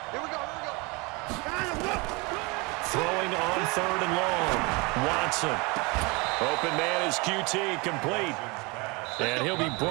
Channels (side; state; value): left; quieter; 27.6 dB